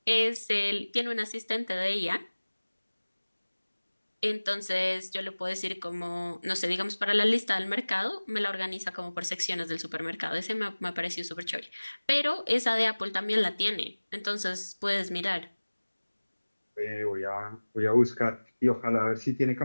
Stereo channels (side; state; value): both; inverted; correlation -1.00